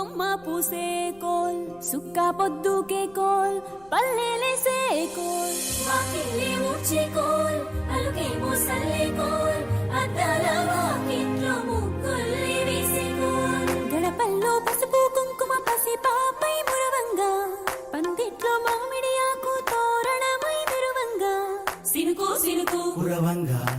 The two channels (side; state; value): left; noise; rumble, 29 dB below the sound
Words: పూసే coal సుక్క పొద్దుకే coal పల్లెలేసే coal వాకిలి ఊడ్చే కోల్ అలుకేమో సల్లే కోల్ అద్దాల వాకిట్లో ముగ్గుల్ని వేసే కోల్ గడపల్లో పసుపు కుంకుమ పసి పాపై మురవంగా పందిట్లో మామిడి ఆకు తోరణమై మెరువంగా సినుకు సినుకు పురవంగా